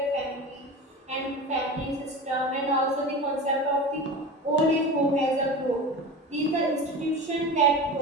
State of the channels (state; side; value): normal; both; correlation 0.30